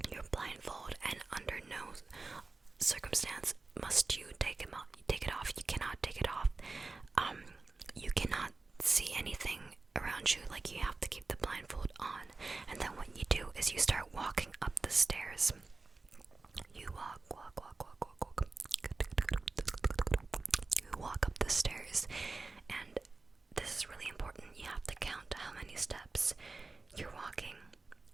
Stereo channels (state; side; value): quieter; left; 3.7 dB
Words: And under no circumstance must you take it off. You cannot take it off. You cannot see anything around you. Like, you have to keep the blindfold on. And then what you do is you start walking up the stairs. You walk. You walk up the stairs, and this is really important. You have to count how many steps you're walking.